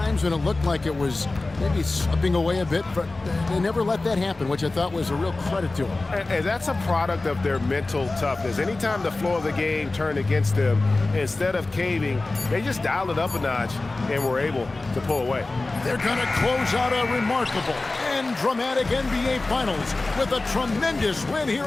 when it looked like it was maybe slipping away a bit, but they never let that happen, which I thought was a real credit to them. And that's a product of their mental toughness. Anytime the floor of the game turned against them, instead of caving, they just dialed it up a notch and were able to pull away. They're going to close out a remarkable and dramatic NBA Finals with a tremendous win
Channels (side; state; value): right; quieter; 3.2 dB